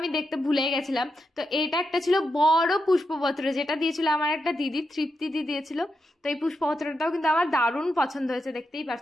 দেখতে ভুলে গেছিলাম। তো এটা একটা ছিল বড় পুষ্পপত্র, যেটা দিয়েছিল আমার একটা দিদি, তৃপ্তি দিদি দিয়েছিল। তো এই পুষ্পপত্রটাও কিন্তু আমার দারুণ পছন্দ হয়েছে, দেখতেই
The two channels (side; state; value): both; normal; correlation 0.85